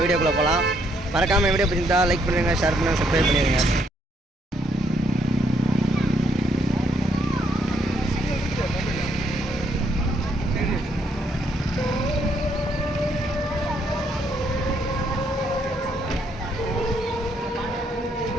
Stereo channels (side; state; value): both; normal; correlation 0.71